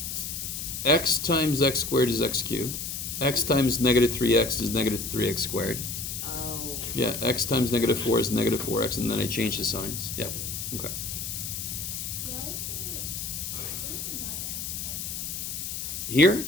X times x squared is x cubed. X times negative 3x is negative 3x squared. Oh. Yeah, x times negative 4 is negative 4x, and then I change the signs. Yep. Okay. Why is there? Where did the 9x come from? Here?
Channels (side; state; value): left; noise; hiss, 5 dB below the sound